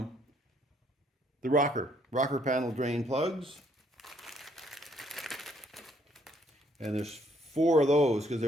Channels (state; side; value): normal; both; correlation 0.68